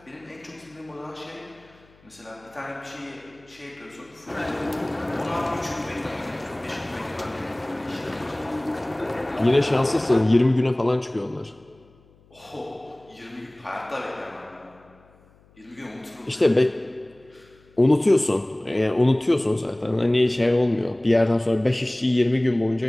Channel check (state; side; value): noise; left; hum, 29 dB below the sound